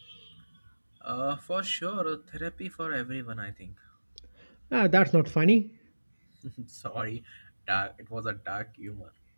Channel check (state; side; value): inverted; both; correlation -1.00